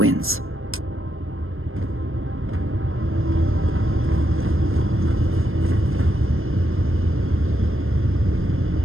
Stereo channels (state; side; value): late; left; 0.60 ms